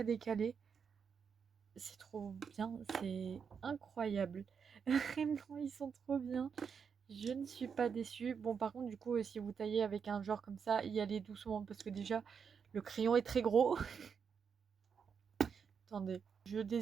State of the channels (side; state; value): left; quieter; 6.5 dB